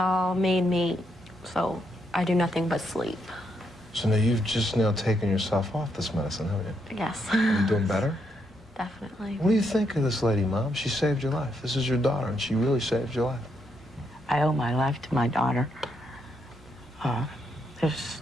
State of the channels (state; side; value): normal; both; correlation 0.78